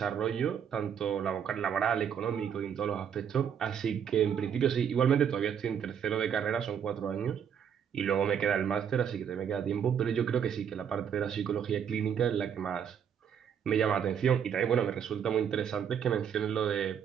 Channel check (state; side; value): quieter; left; 8.0 dB